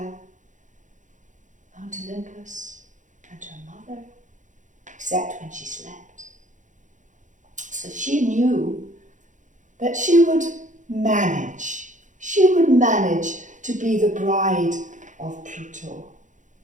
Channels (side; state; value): left; late; 0.36 ms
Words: Mount Olympus and her mother, except when she slept. So she knew that she would manage. She would manage to be the bride of Pluto.